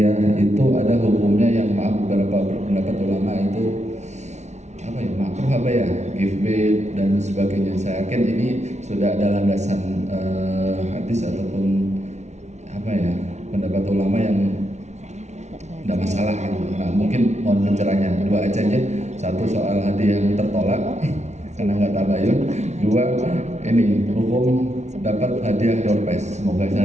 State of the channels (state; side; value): late; left; 0.32 ms